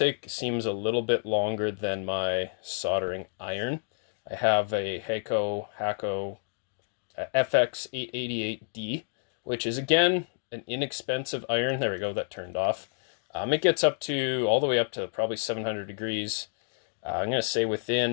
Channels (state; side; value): silent; right; digital silence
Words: seems a little bit longer than my soldering iron. I have a Hakko FR-301 which is again an inexpensive iron. There we go, that turned off. It gets up to all the way up to probably 700 degrees. I'm going to say